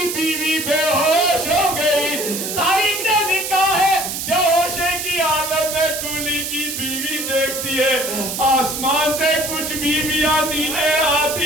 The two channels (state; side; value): noise; right; hiss, 4 dB below the sound